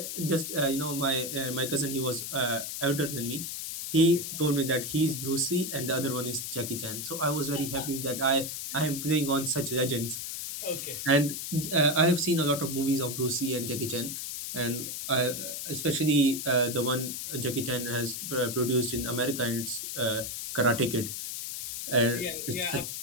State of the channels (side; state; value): left; noise; hiss, 5 dB below the sound